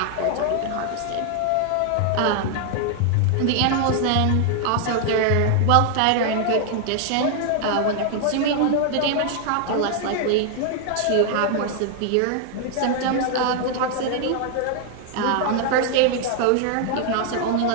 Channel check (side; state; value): both; different; correlation 0.00